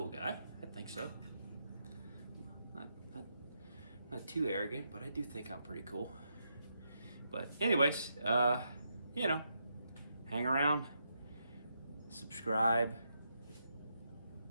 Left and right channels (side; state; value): both; inverted; correlation -0.81